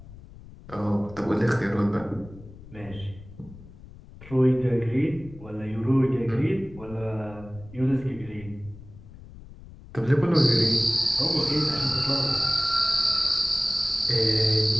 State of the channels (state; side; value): noise; left; rumble, 18 dB below the sound